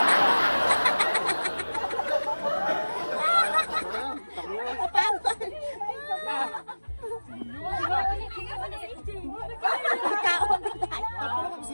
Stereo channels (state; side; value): inverted; both; correlation -1.00